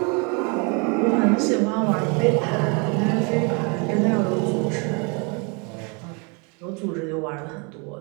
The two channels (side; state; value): left; quieter; 33.0 dB